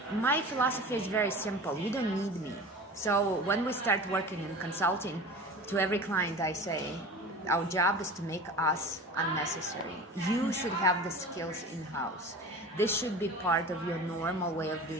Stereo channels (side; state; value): both; normal; correlation 0.35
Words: philosophy is very simple. You don't need me. So when we start working in consulting, to every client I say, our job is to make us unnecessary. You should have the skills in-house. This should be part of your normal way of